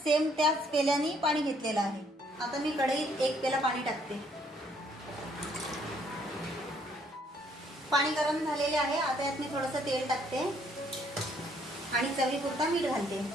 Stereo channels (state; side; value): normal; both; correlation 0.66